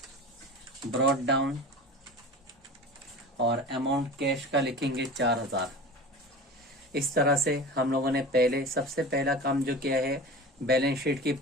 ब्रॉट डाउन और अमाउंट कैश का लिखेंगे 4,000। इस तरह से हम लोगों ने सबसे पहला काम जो किया है बैलेंस शीट की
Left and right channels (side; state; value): both; normal; correlation 0.34